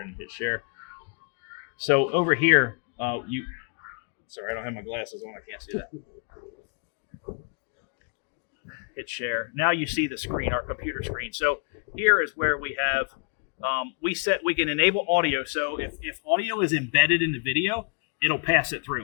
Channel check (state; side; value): quieter; right; 35.9 dB